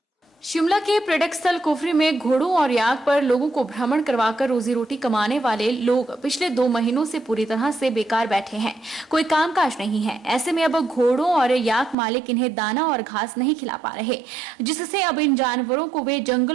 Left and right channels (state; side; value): drops out; left; at 12.0 s